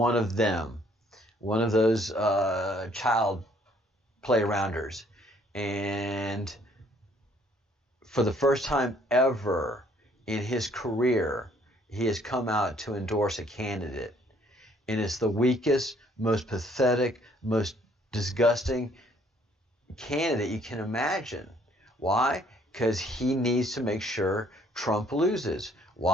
of them, one of those child play-arounders. And for the first time ever in his career, he has come out to endorse a candidate. And it's the weakest, most pathetic, most disgusting candidate you can imagine. Why? Because he needs to make sure Trump loses.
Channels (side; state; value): both; normal; correlation 0.63